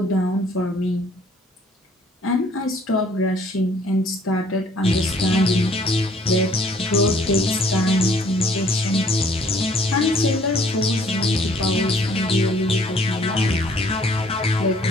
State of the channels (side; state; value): both; normal; correlation 0.59